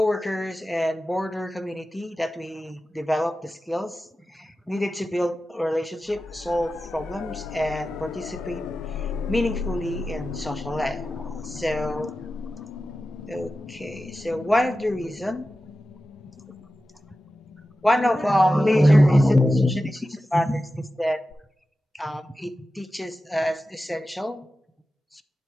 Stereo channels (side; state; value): both; normal; correlation 0.93